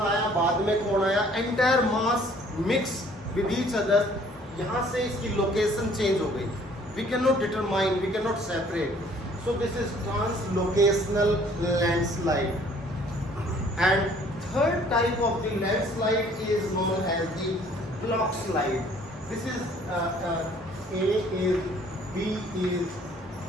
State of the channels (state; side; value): normal; both; correlation 0.57